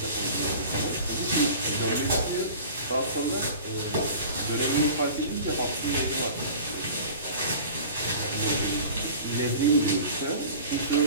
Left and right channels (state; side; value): inverted; both; correlation -0.40